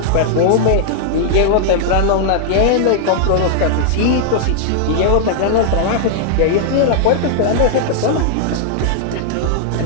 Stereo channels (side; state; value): both; different; correlation -0.01